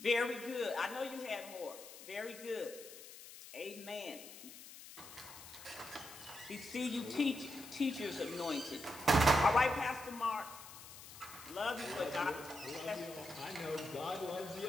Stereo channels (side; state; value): left; noise; hiss, 15 dB below the sound